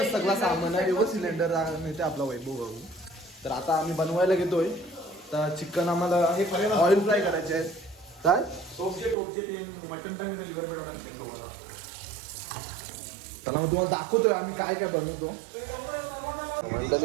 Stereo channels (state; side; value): drops out; left; at 9.2 s